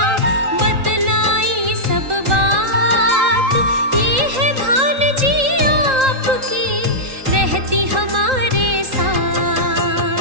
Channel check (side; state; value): left; late; 3.8 ms